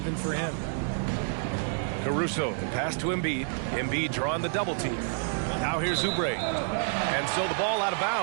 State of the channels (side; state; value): left; silent; digital silence